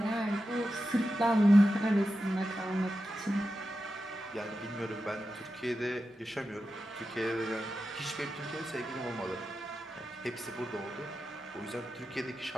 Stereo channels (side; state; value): both; normal; correlation 0.91